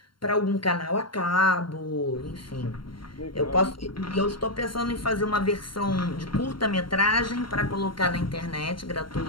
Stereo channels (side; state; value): right; late; 0.73 ms